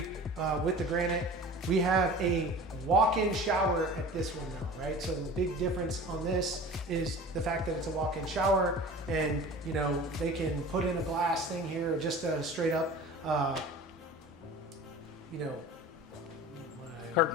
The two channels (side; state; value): both; normal; correlation 0.40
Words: with the granite. We have a walk-in shower at this one now, right? So the big difference on this is the fact that it's a walk-in shower, and you know, they can put in a glass thing here, or just a straight up, you know,